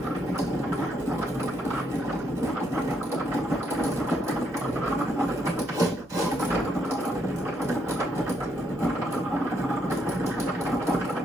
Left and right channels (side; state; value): both; normal; correlation 0.75